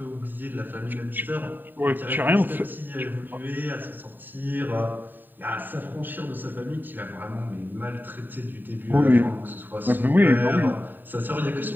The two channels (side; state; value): left; late; 0.091 ms